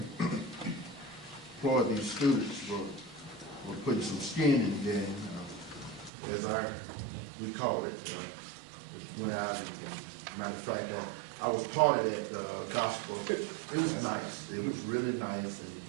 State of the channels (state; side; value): drops out; left; at 6.1 s